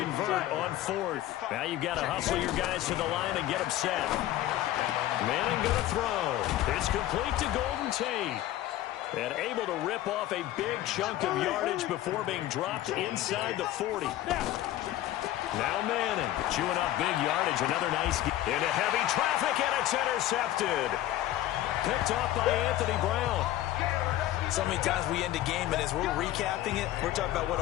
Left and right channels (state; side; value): quieter; right; 14.1 dB